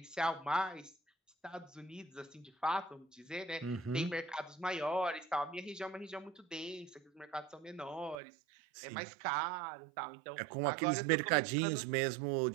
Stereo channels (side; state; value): left; drops out; at 8.2 s